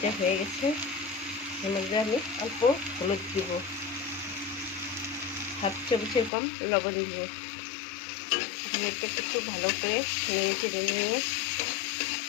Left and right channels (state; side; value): drops out; right; at 6.3 s